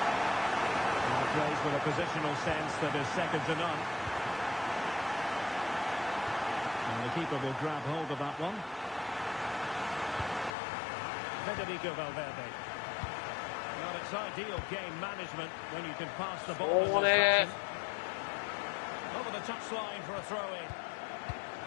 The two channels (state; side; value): drops out; right; at 10.6 s